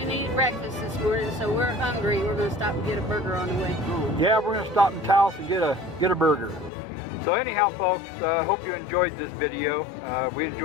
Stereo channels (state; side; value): drops out; right; at 6.7 s